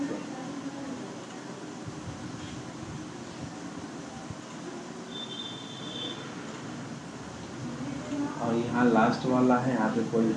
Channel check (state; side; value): identical; both; correlation 1.00